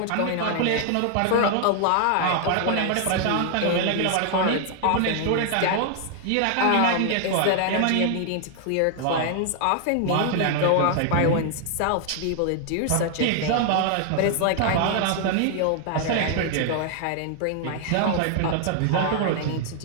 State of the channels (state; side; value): different; both; correlation 0.00